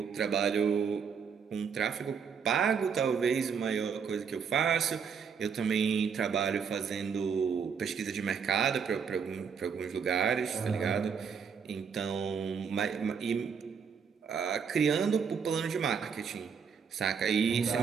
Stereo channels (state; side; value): quieter; left; 6.5 dB